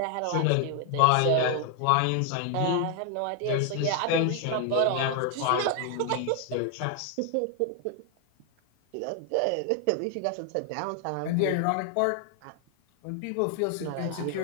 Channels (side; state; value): both; different; correlation 0.00